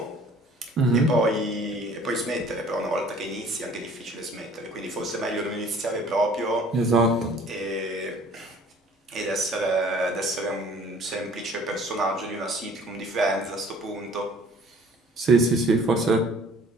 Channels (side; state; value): both; normal; correlation 0.53